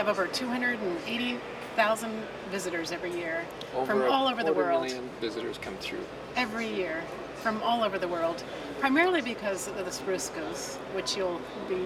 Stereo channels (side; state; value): both; identical; correlation 1.00